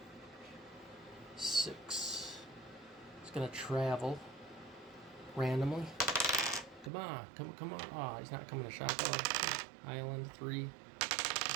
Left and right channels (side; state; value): left; drops out; at 6.9 s